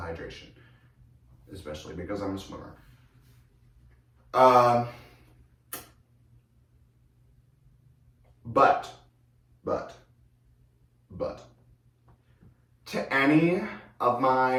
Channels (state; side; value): identical; both; correlation 1.00